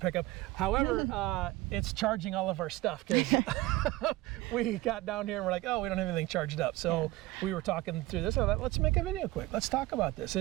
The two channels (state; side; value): quieter; left; 18.8 dB